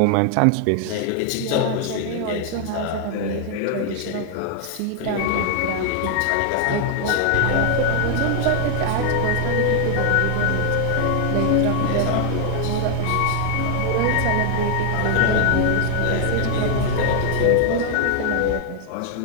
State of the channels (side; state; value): both; different; correlation 0.00